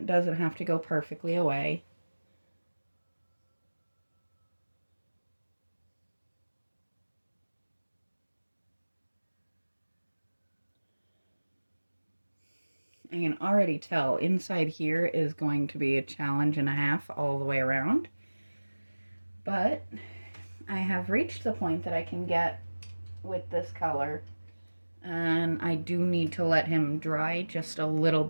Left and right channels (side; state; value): both; inverted; correlation -1.00